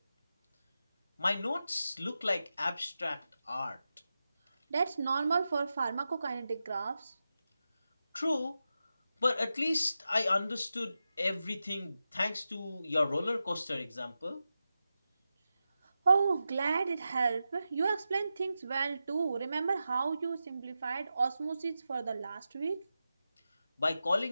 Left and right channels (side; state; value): both; inverted; correlation -0.91